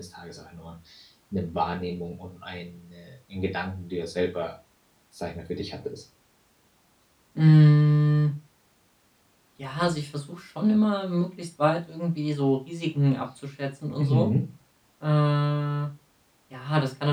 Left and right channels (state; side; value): identical; both; correlation 1.00